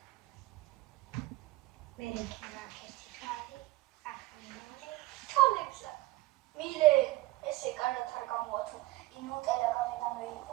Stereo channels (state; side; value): quieter; left; 19.0 dB